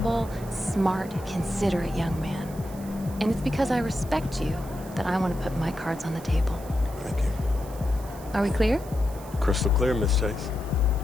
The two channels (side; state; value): right; noise; hiss, 20 dB below the sound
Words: smart, considerate young man. And it's because I respect you that I want to put my cards on the table. Thank you. Are we clear? Crystal clear, Miss Chase.